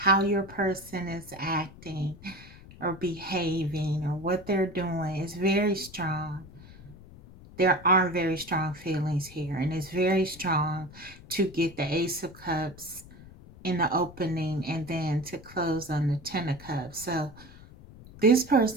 your person is acting or behaving or what they're doing. It's very strong. There are very strong feelings here, and it's very strong to get the Ace of Cups in the opening and then to close on the Ten of Cups. So this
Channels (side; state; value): left; noise; rumble, 19 dB below the sound